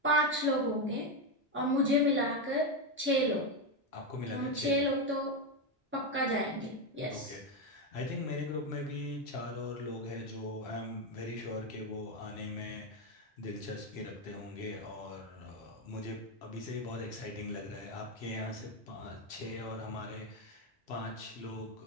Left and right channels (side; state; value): both; normal; correlation 0.08